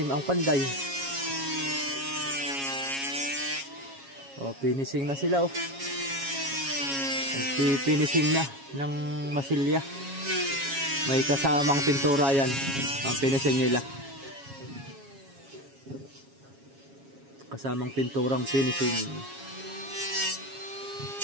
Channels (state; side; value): late; left; 7.3 ms